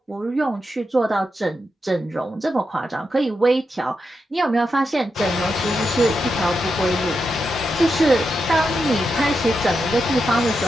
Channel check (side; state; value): both; normal; correlation 0.86